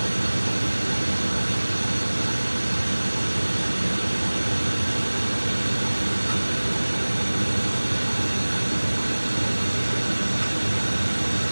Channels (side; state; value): both; inverted; correlation -1.00